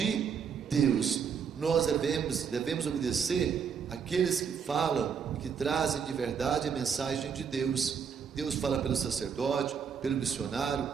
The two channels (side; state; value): left; quieter; 6.9 dB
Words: Deus. Nós devemos obedecer aqueles que falam, que trazem de verdade a mensagem de Deus. Deus fala pelo sacerdote, pelo missionário.